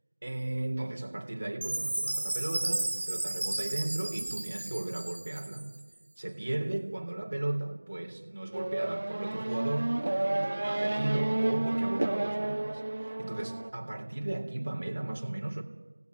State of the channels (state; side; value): inverted; both; correlation -1.00